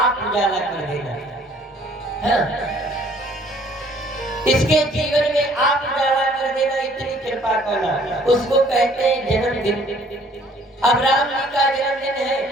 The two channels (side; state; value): both; normal; correlation 0.58